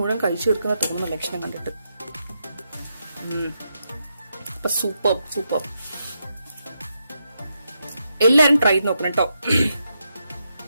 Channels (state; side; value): inverted; both; correlation -0.83